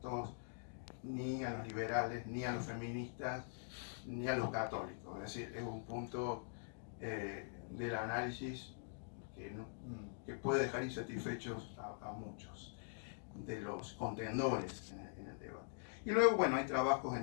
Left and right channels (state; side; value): silent; right; digital silence